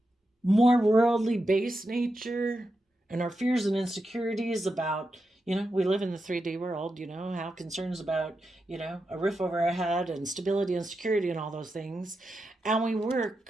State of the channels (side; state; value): both; normal; correlation 0.88